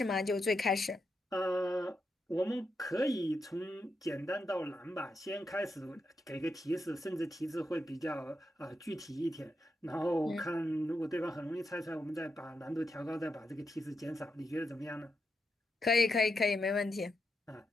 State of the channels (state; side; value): normal; both; correlation 0.84